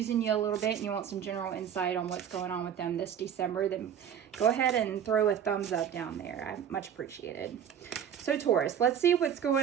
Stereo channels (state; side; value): quieter; left; 8.9 dB